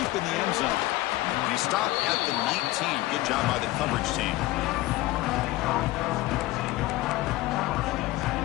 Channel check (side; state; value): right; quieter; 17.9 dB